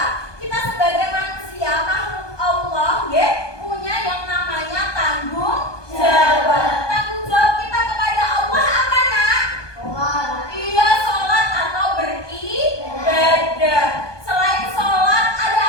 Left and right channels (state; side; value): late; right; 1.2 ms